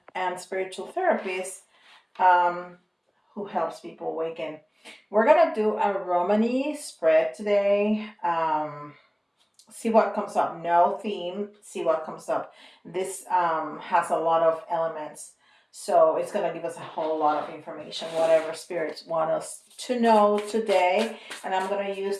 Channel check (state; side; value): identical; both; correlation 1.00